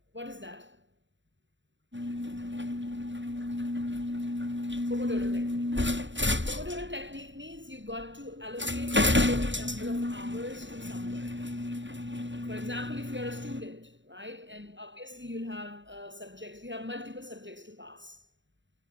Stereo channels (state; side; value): late; left; 0.54 ms